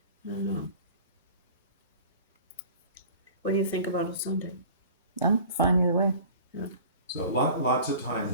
I don't know. What do you think about a Sunday? I'm fine either way. so lots of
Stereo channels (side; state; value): both; inverted; correlation -0.42